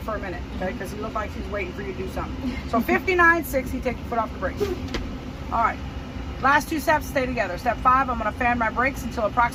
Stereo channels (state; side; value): identical; both; correlation 1.00